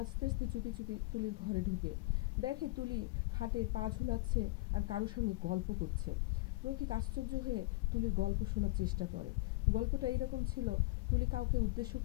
আস্তে আস্তে চুপি চুপি তুলির ঘরে ঢুকে দেখে তুলি খাটে পা ঝুলাচ্ছে আর কারোর সঙ্গে গল্প করছে। রফিক আশ্চর্য হয়ে তুলির গল্প শোনার চেষ্টা করে। গল্পটা এইরকম ছিল, তুলি কাউকে উদ্দেশ্য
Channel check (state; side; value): quieter; right; 21.9 dB